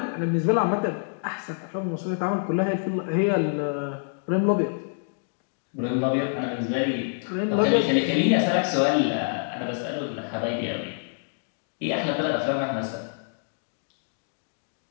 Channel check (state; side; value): silent; right; digital silence